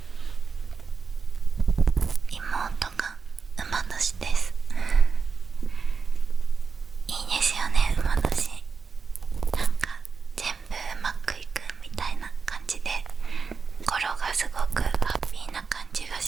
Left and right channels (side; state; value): left; quieter; 5.2 dB